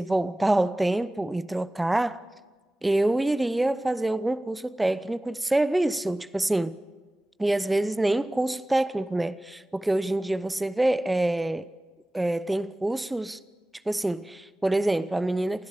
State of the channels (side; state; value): both; normal; correlation 0.98